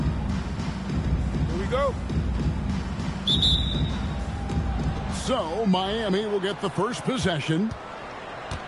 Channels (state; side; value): identical; both; correlation 1.00